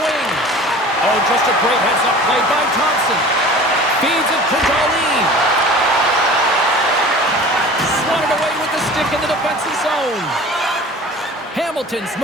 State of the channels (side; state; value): both; normal; correlation 0.41